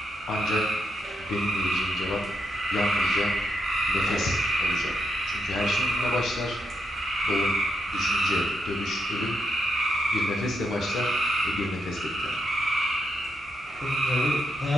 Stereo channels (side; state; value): both; normal; correlation 0.81